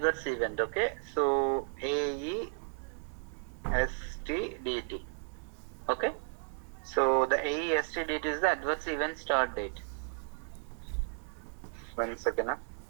event. Okay, so AESTDT. Okay, so the AESTDT is the adverse event start date. 1 second.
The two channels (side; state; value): left; silent; digital silence